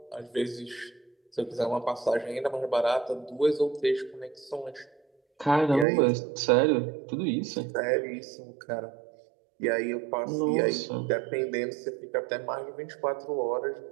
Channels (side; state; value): left; drops out; at 5.9 s